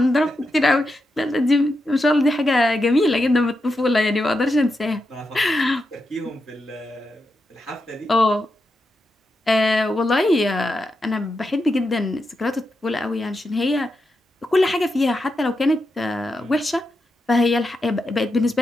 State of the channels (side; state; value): both; normal; correlation 0.86